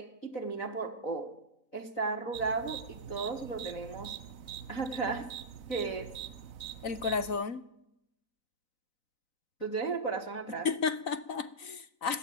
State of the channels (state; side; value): late; right; 4.0 ms